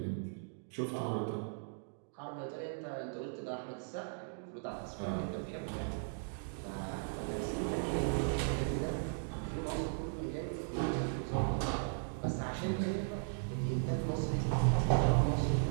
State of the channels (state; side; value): silent; left; digital silence